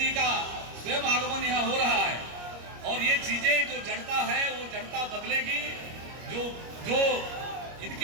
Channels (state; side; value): late; left; 25 ms